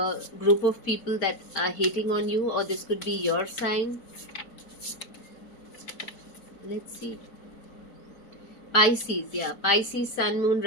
group of people that are hating on you, or this could be your sign. Let's see. Pisces, yeah. Pisces, Sun, Moon,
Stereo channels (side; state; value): right; late; 4.2 ms